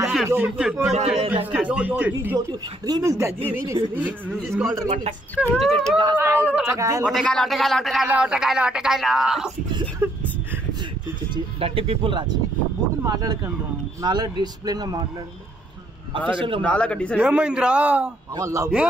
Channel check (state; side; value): normal; both; correlation 0.70